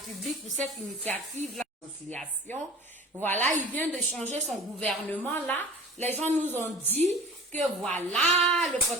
pour cette initiative, la réconciliation. Voilà, il vient de changer son gouvernement là. Les gens nous ont dit que voilà, le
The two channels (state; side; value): normal; both; correlation 0.42